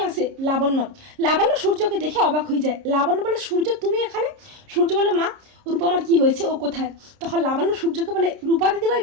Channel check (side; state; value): left; late; 30 ms